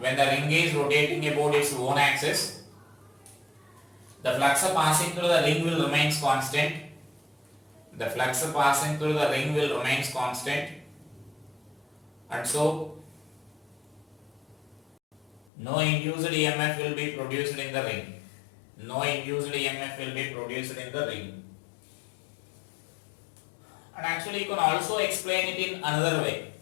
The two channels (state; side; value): drops out; right; at 15.5 s